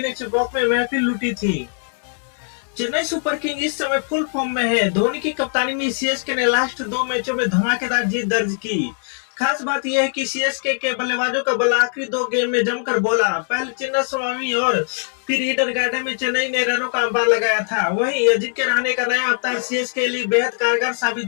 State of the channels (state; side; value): silent; right; 61 dB below the other